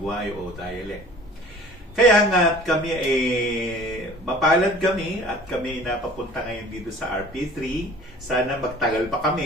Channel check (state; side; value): normal; both; correlation 0.47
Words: o dialect. Kaya nga kami mapalad kami at kami napapunta ngayon dito sa RP3. Sana magtagal pa